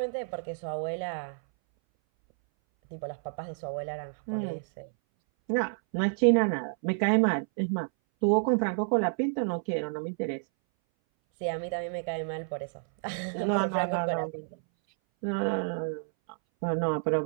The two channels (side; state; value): left; silent; 58 dB below the other